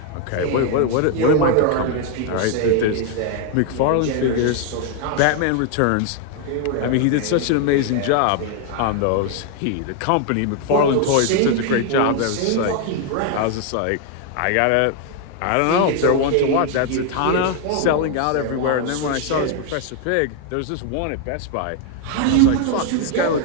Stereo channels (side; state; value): both; different; correlation 0.01